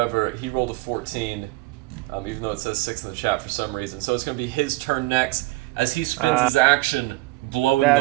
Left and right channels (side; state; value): left; quieter; 21.2 dB